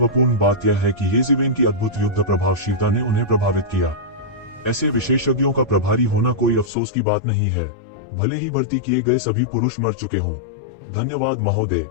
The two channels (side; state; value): right; drops out; at 6.7 s